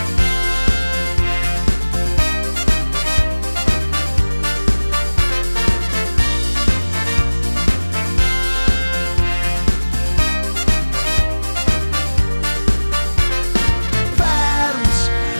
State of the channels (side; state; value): both; inverted; correlation -1.00